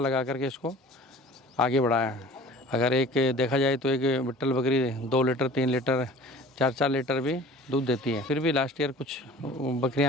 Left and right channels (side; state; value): both; normal; correlation 0.45